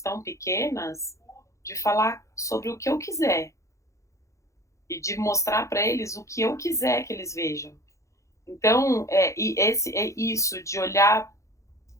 pequenas, de falar sobre o que eu quiser e de mostrar para eles o que eu quiser que eles vejam. Então, isso de olhar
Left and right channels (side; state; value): right; late; 0.15 ms